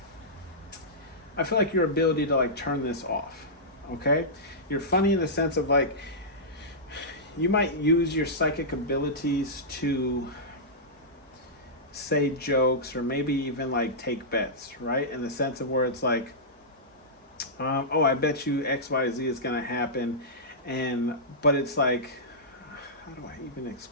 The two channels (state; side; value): normal; both; correlation -0.14